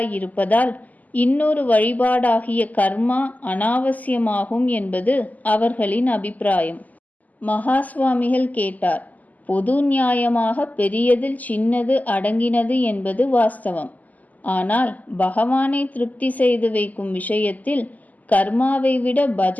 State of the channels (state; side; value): late; right; 0.079 ms